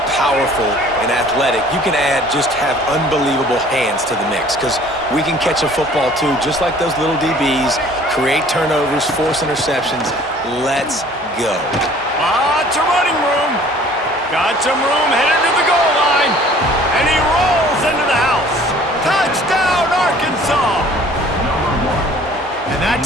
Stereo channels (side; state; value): both; normal; correlation 0.52